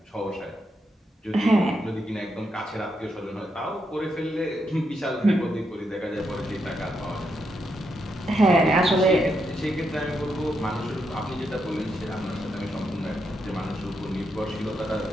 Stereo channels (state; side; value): normal; both; correlation 0.81